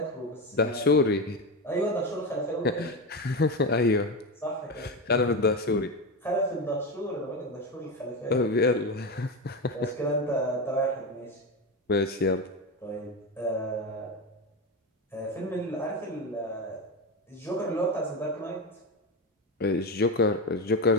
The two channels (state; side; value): normal; both; correlation 0.17